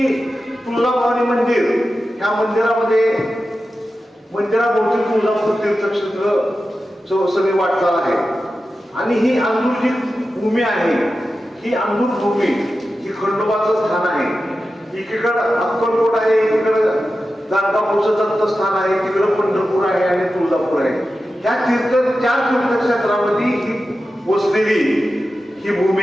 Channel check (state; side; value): normal; both; correlation 0.92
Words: तुळजाभवानी मंदिर ह्या मंदिराभोवती तुळजापूर तीर्थक्षेत्र सगळी वाटचाल आहे आणि ही अंदूर जी भूमी आहे, ही अंदूर भूमी ही खंडोबाचं स्थान आहे। एकीकडं अक्कलकोट आहे, एकीकडं गाणगापूरचं दत्तस्थान आहे, तिकडं पंढरपूर आहे आणि तुळजापूर आहे। ह्या चार तीर्थक्षेत्रामध्ये ही वसलेली ही